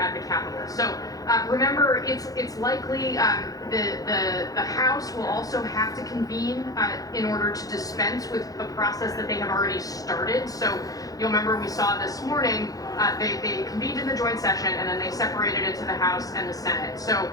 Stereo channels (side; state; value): right; late; 0.17 ms